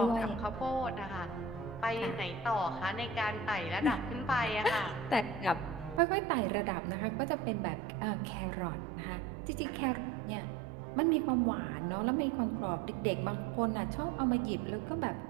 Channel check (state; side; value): drops out; left; at 6.0 s